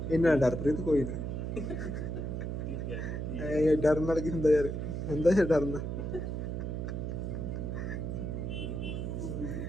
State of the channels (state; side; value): noise; right; hum, 3 dB below the sound